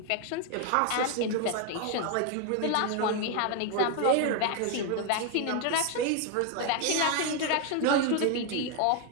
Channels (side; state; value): both; different; correlation 0.01